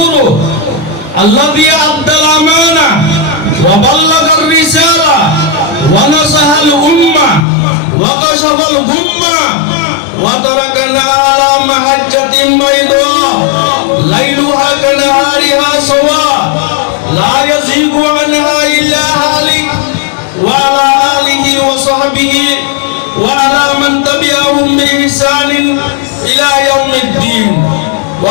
الذي أدى الأمانة وبلغ الرسالة ونصح الأمة وكشف الغمة وتركنا على محجة بيضاء ليلها كنهارها سواء لا يزيغ عنها إلا هالك وعلى آله وصحبه وعلى من تبعهم بإحسان إلى يوم الدين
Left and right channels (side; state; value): right; drops out; at 7.5 s